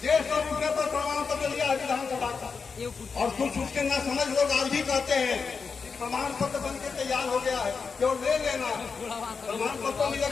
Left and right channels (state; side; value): quieter; right; 5.2 dB